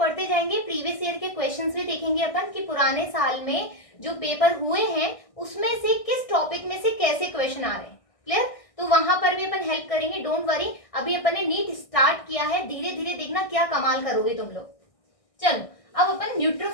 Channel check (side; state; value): right; late; 1.6 ms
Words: जाएंगे, प्रीवियस ईयर के क्वेश्चंस भी देखेंगे अपन कि पुराने साल में जो पेपर हुए हैं उसमें से किस टॉपिक में से कैसे क्वेश्चन आ रहे हैं। क्लियर? तो वहां पर भी अपन हेल्प करेंगे, डोंट वरी। अभी अपन ने नीट स्टार्ट किया है, धीरे धीरे देखना क्या कमाल करोगे तुम लोग। चलो अब अपन